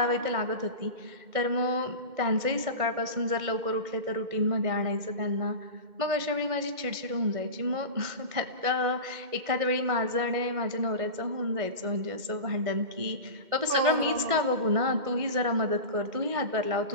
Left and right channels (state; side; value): late; left; 2.1 ms